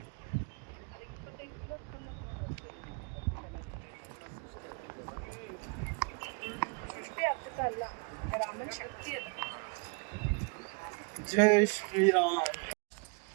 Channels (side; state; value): left; quieter; 34.5 dB